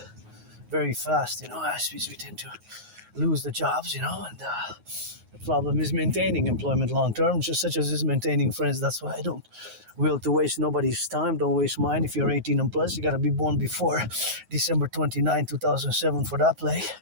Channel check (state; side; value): late; left; 9.4 ms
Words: very fast, as we tend to lose the jobs, and the problem is maintaining employment long term, just such as is maintaining friends. That's why I don't will to waste nobody's time. Don't waste mine. If you're 18 and plus, you got to be born before December 29, 2007 for that play.